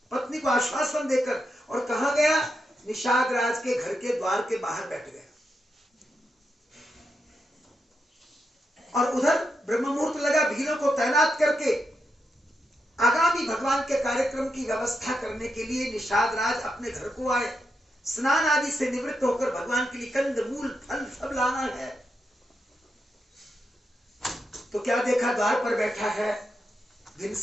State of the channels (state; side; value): normal; both; correlation 0.85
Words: पत्नी को आश्वासन देकर, और कहा गया निषाद राज के घर के द्वार के बाहर बैठ गया, और उधर ब्रह्म मुहूर्त लगा, भीलों को तैनात करके आगामी भगवान के कार्यक्रम की व्यवस्था करने के लिए निषाद राज अपने घर को आए। स्नान आदि से निवृत्त होकर भगवान के लिए कंद मूल फल सब लाना है। तो क्या देखा, द्वार पर बैठा है